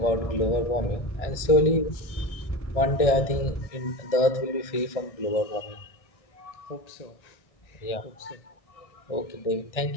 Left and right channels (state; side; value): late; right; 1.6 ms